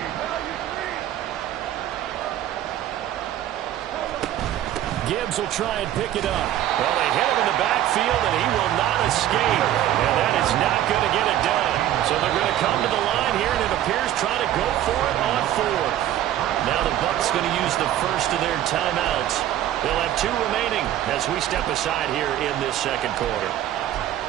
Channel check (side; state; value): left; quieter; 12.3 dB